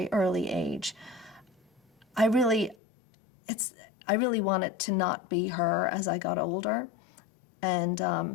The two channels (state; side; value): drops out; right; at 2.8 s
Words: early age. I really wanted to not be her as I got older, and